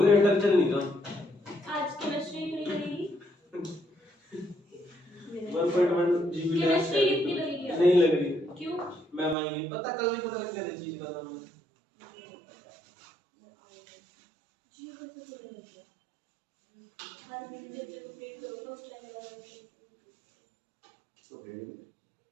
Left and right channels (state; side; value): drops out; left; at 9.3 s